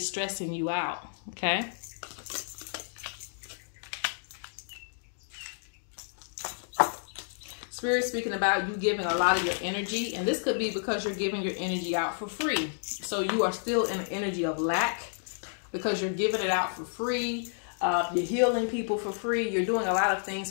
stressing you out. Okay. Spirit speaking about you giving a lot of your energy, and this could be because you're giving your energy out for free. So you are still in an energy of lack because you're giving it out for free. You're healing people for free. You're doing a lot of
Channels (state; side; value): silent; right; digital silence